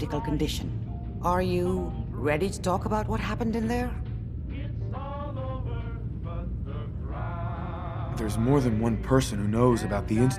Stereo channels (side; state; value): both; identical; correlation 1.00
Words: condition. Are you ready to talk about what happened in there? There's more than one person who knows about the